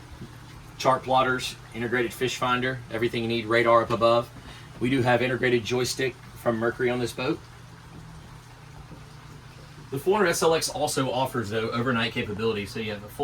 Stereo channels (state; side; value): identical; both; correlation 1.00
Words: chart plotters, integrated fish finder, everything you need, radar up above. We do have integrated joystick from Mercury on this boat. The 400 SLX also offers, though, overnight capability, so you have a